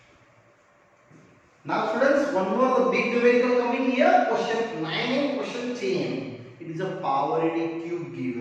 Now students, one more big numerical coming here. Question 9 and question 10. It is a power in a cube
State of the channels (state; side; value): identical; both; correlation 1.00